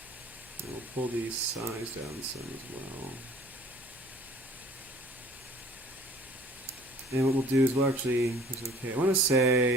and we'll pull the size down some as well. And what we'll do is we'll actually, okay, I want to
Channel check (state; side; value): normal; both; correlation 0.51